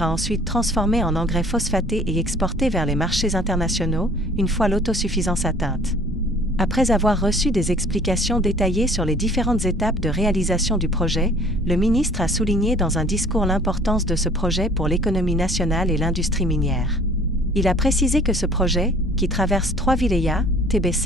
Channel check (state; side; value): normal; both; correlation 0.52